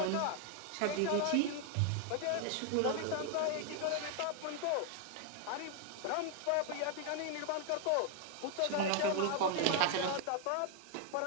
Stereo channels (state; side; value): different; both; correlation 0.00